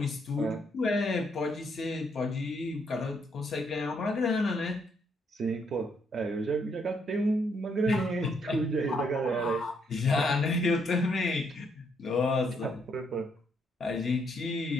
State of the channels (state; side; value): normal; both; correlation 0.73